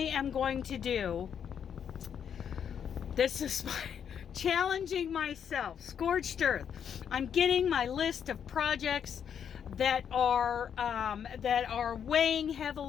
going to do. This is challenging myself. Scorched Earth. I'm getting my list of projects that are weighing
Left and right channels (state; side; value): quieter; right; 8.1 dB